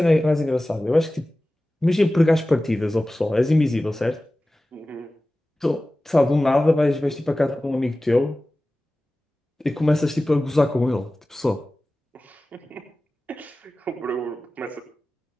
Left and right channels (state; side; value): normal; both; correlation 0.96